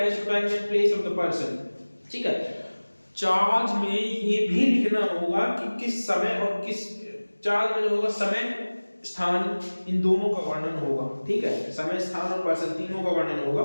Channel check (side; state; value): both; inverted; correlation -1.00